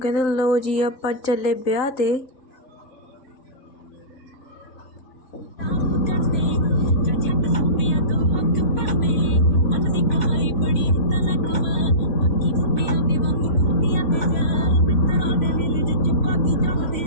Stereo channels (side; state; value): right; late; 3.8 ms